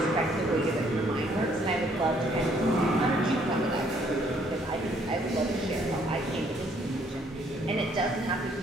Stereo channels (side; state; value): both; normal; correlation 0.65